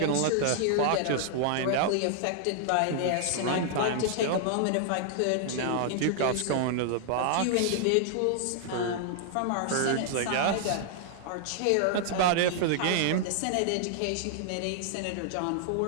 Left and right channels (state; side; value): different; both; correlation -0.01